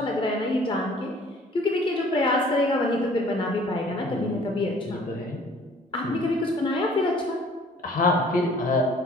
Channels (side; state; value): both; normal; correlation 0.54